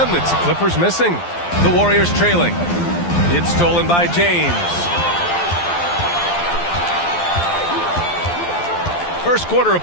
it's the Clippers missing. The Warriors trailing. It's stolen by James. First quarter of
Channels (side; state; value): right; late; 12 ms